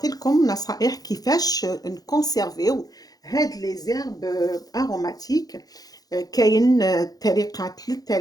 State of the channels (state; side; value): late; right; 0.18 ms